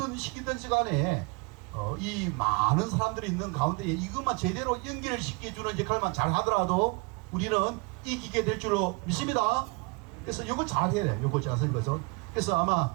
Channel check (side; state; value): left; quieter; 29.2 dB